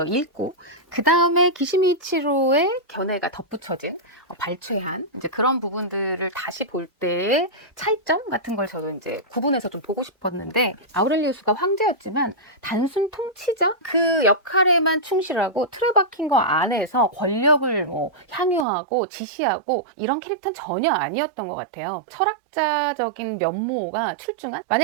읽고 그 다음에 기시미치로의 견해가 덧붙여진 발췌한 이제 그런 부분들을 다시 볼 때의 차이점 같은 걸 저도 이제 구분해서 좀 보고 싶었는데, 아우렐리우스가 황제였지만 단순 통치자 그 역할에만 충실하고 틀에 박힌 거 안에서 권력을 향유하고 지시하고 이런 캐릭터는 전혀 아니었던 것 같아요. 철학 철학자적인 면모가 출중한,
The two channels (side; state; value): left; drops out; at 18.7 s